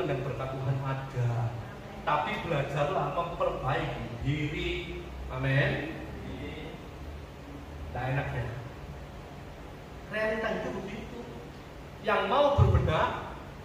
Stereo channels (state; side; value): identical; both; correlation 1.00